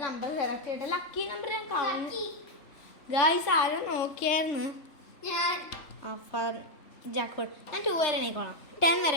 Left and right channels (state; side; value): late; right; 3.4 ms